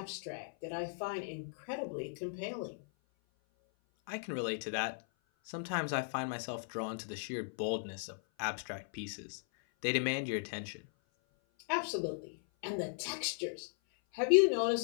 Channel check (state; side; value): silent; right; 53 dB below the other